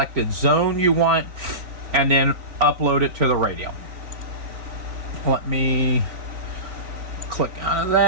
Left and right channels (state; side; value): late; left; 3.9 ms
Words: zone you want and then upload it to the radio. Let me click out of